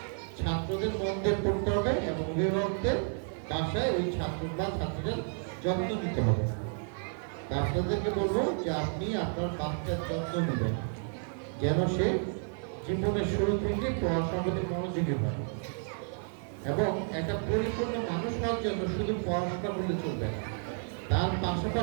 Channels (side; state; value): left; silent; 57 dB below the other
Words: ছাত্রদের মন দিয়ে পড়তে হবে, এবং অভিভাবকদের বাসায় ওই ছাত্র বা ছাত্রীদের যত্ন নিতে হবে। আপনাদেরকে বলবো যে আপনি আপনার বাচ্চার যত্ন নেবেন, যেন সে জীবনের শুরু থেকে পড়াশোনার প্রতি মনোযোগী হয়, এবং একটা পরিপূর্ণ মানুষ হওয়ার জন্য শুধু পড়াশোনা করলে চলবে না, তার